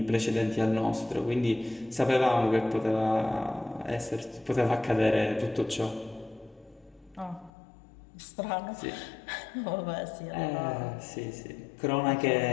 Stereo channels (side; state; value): right; drops out; at 7.5 s